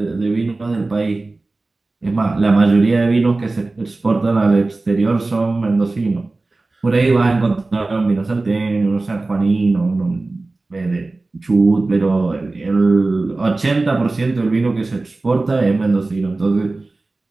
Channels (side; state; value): left; quieter; 3.3 dB